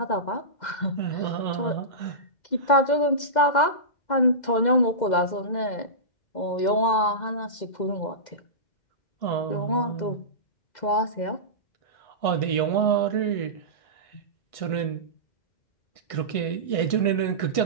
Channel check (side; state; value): right; late; 2.1 ms